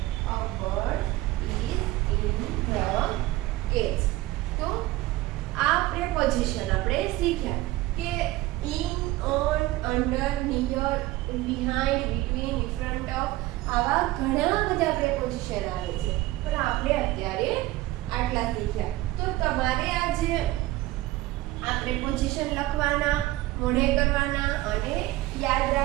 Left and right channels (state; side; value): quieter; left; 17.6 dB